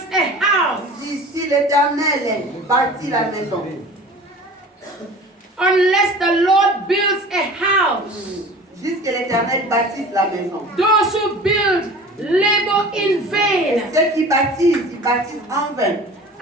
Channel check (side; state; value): both; normal; correlation 0.41